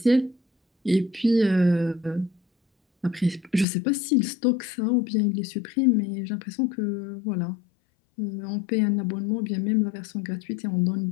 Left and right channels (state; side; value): drops out; right; at 3.7 s